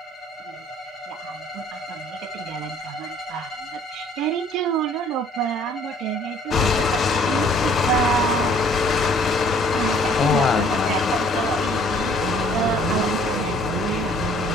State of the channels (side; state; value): both; normal; correlation 0.58